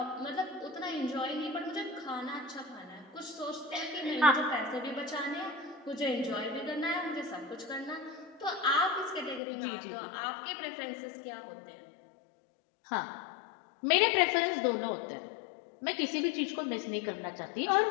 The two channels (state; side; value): drops out; right; at 9.4 s